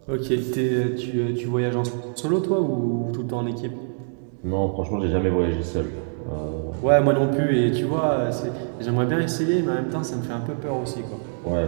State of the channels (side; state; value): left; silent; digital silence